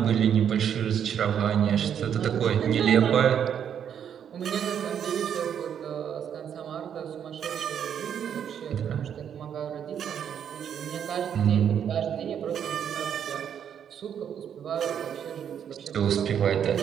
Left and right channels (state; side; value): quieter; left; 8.6 dB